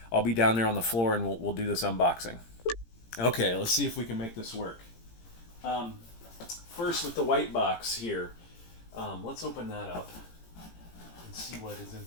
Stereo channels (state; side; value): late; right; 17 ms